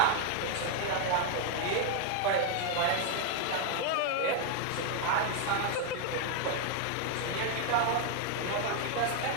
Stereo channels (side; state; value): both; different; correlation 0.00